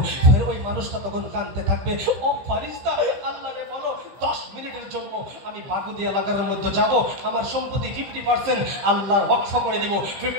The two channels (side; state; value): left; late; 15 ms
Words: ফের ওই মানুষটা তখন কাঁদতে থাকবে, ও ফারিস্তা, আল্লাহরে বলো 10 মিনিটের জন্য আমি বাগুদি এলাকার মধ্যে যাব, আমার সম্পত্তি 50% আল্লাহর ওয়াকফ করে দিব,